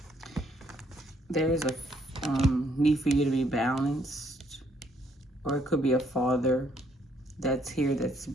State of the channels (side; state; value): both; normal; correlation 0.68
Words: There is a need for you to be balanced, or it could be a father that's here that's